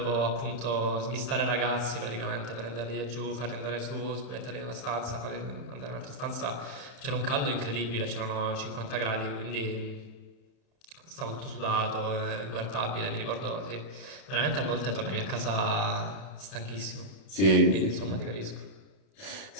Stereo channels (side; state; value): right; late; 31 ms